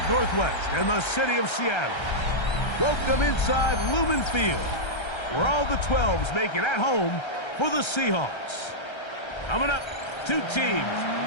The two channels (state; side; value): late; right; 1.3 ms